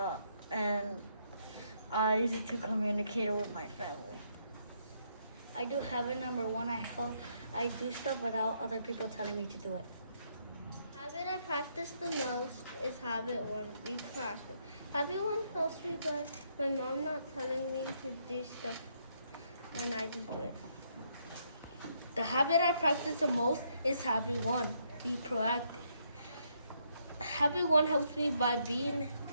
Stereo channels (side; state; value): both; inverted; correlation -0.74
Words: and I use it to communicate with my family. I do habit number 1. I do stuff without other people telling me to do it. Habit I practice the most is habit 1, be proactive. Habit 1 helps me by my mom not telling me to do stuff and I just do it. The habit I practice the most is habit 1, be proactive. Habit 1 helps me by being